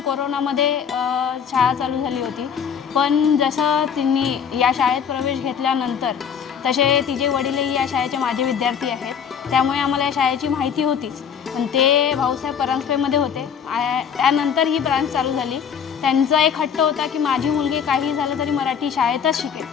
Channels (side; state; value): right; quieter; 7.4 dB